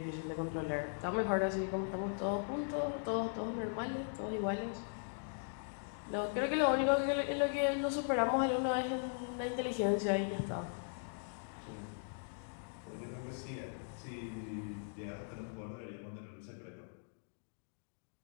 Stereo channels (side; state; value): right; silent; digital silence